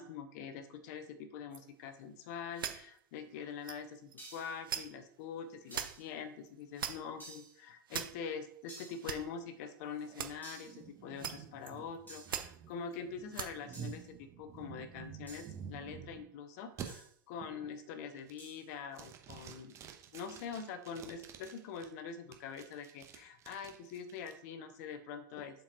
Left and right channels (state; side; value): normal; both; correlation 0.04